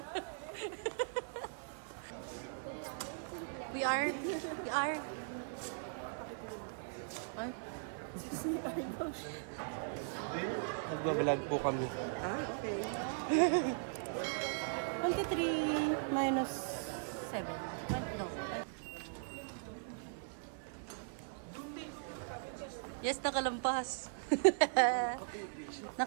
We are. Ay. Nagbabalag po kami. Okay. 23 minus 7. No. Yes, nakalampas.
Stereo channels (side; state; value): left; silent; 52 dB below the other